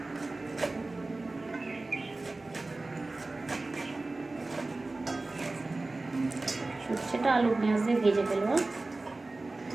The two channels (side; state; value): left; quieter; 3.2 dB